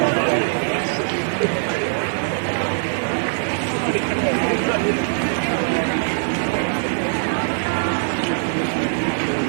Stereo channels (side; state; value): left; silent; 63 dB below the other